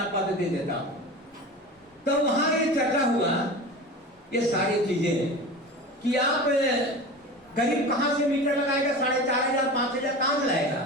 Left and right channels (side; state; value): both; normal; correlation 0.32